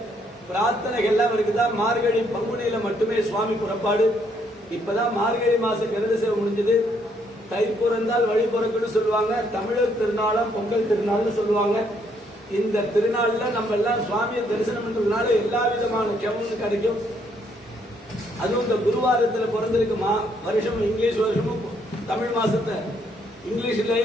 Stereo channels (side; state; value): both; normal; correlation 0.70